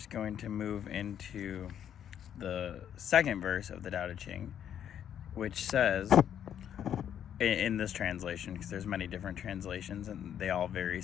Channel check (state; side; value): quieter; right; 9.5 dB